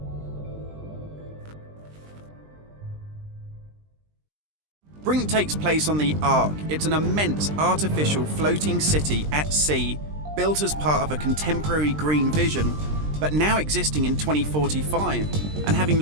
Brink takes place on the Ark. It's an immense artificial floating city at sea, built as part of a contemporary green vision, but now existing in 2045, and having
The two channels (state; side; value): late; left; 20 ms